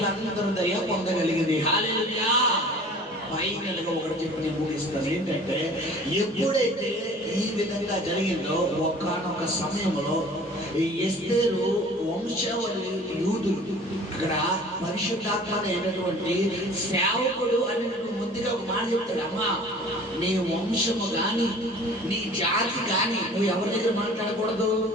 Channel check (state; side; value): normal; both; correlation 0.47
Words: దయ పొందగలిగింది. హల్లెలూయా. ఫైనల్గా ఒకటి చెప్పి నేను ముగిస్తాను. ఏంటంటే ఎప్పుడైతే ఈ విధంగా జరిగిందో ఒకానొక సమయంలో ఈ ఎస్తేరు వంశావళి యూదులు అక్కడ పరిశుద్ధాత్మ అయినటువంటి సేవకుడు అనేటువంటి ముందుగా ఒక మాట చెప్తాడు, అమ్మా నీ వంశము గాని నీ జాతి గాని నువ్వు ఎవరి దగ్గర మాట్లాడకూడదు,